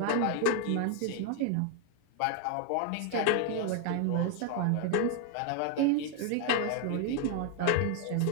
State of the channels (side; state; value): both; different; correlation 0.00